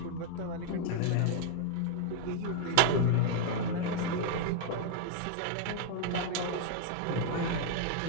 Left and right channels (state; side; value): different; both; correlation 0.00